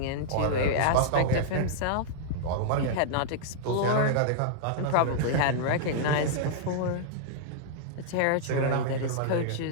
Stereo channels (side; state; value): both; different; correlation -0.01